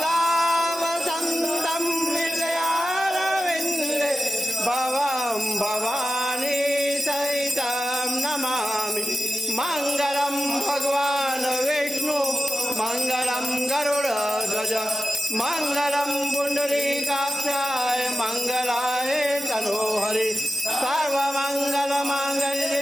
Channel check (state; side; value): normal; both; correlation 0.93